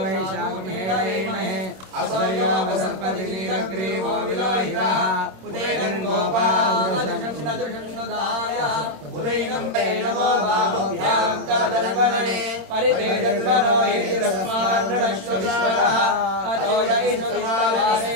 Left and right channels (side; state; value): left; late; 26 ms